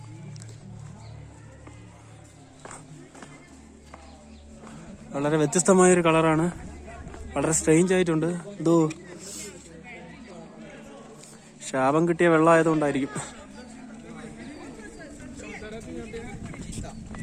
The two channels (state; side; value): identical; both; correlation 1.00